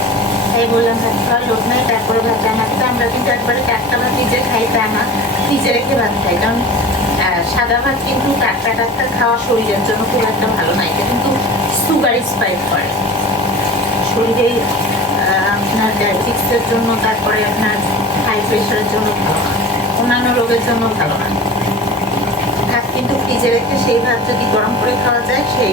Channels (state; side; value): normal; both; correlation 0.35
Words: ভাই বললাম ভাত খাওয়ার লোক নাই, তারপরে ভাত রান্না করতে। আমরা কিন্তু একবারে টাটকা ভাত নিজে খাই তা না, ফ্রিজে রেখে ভাত খাই। কারণ সাদা ভাত কিন্তু টাটকা টাটকা খাওয়া শরীরের জন্য খুব একটা ভালো না, এটা কিন্তু সুগার স্পাইক করে শরীরে। আপনার ডায়াবেটিক্সের জন্য, তারপরে আপনার হাই প্রেশারের জন্য ভালো না, অন্যান্য রোগের জন্য ভালো না। ভাত কিন্তু ফ্রিজে রেখে সেই ভাত যদি গরম করে খাওয়া যায়